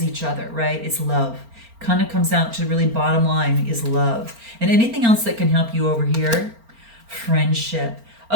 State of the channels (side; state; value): left; late; 4.4 ms